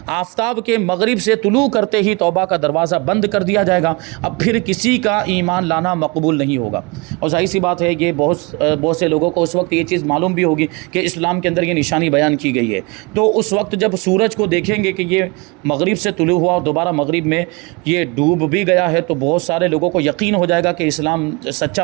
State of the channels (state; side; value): quieter; left; 27.6 dB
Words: آفتاب کے مغرب سے طلوع کرتے ہی توبہ کا دروازہ بند کر دیا جائے گا، اب پھر کسی کا ایمان لانا مقبول نہیں ہوگا۔ اور ظاہر سی بات ہے، یہ بہت سے لوگوں کو اس وقت یہ چیز معلوم بھی ہوگی کہ اسلام کے اندر یہ نشانی بیان کی گئی ہے، تو اس وقت جب سورج کو دیکھیں گے کہ یہ مغرب سے طلوع ہوا اور دوبارہ مغرب میں یہ ڈوب بھی گیا ہے، تو بہت سارے لوگوں کو یقین ہو جائے گا کہ اسلام